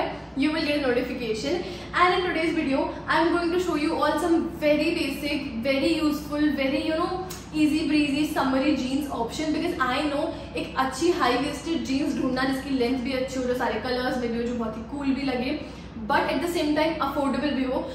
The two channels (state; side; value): identical; both; correlation 1.00